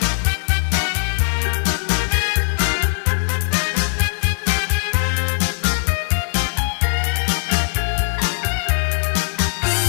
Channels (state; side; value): silent; right; 60 dB below the other